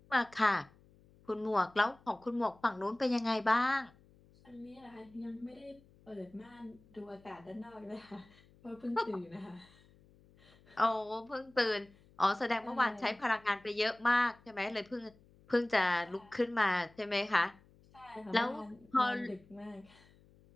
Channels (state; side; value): noise; left; hum, 27 dB below the sound